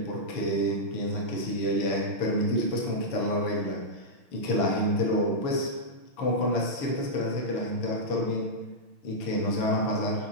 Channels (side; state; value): right; late; 6.4 ms